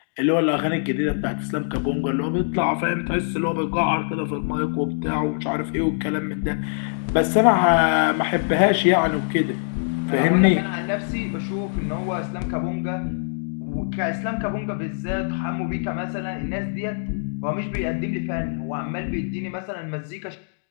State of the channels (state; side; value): silent; right; digital silence